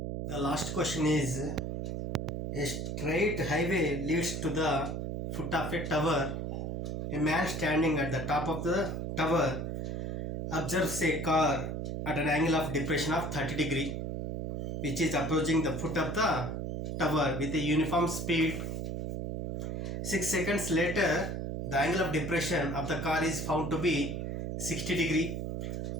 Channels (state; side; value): noise; right; hum, 3 dB below the sound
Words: The last question is a straight highway leads to the foot of a tower. A man standing at the top of the tower observes a car at an angle of depression of 30 degree which is approaching the foot of the tower with a uniform speed. 6 seconds later, the angle of depression of the car is found to be 60 degree.